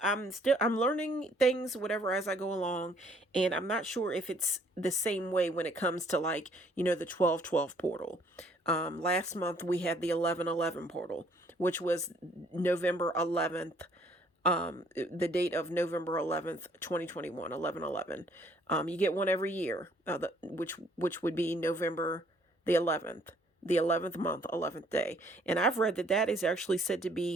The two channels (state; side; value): normal; both; correlation 0.62